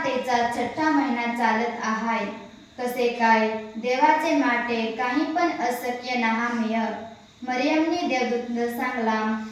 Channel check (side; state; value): both; identical; correlation 1.00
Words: तेचा 6ठा महिना चालत आहाय. कसे काय देवाचे माटे काही पण अशक्य नहामेय. मरियमने देवदूतला सांगला,